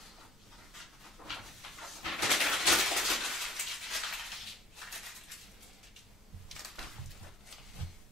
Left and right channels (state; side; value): normal; both; correlation 0.53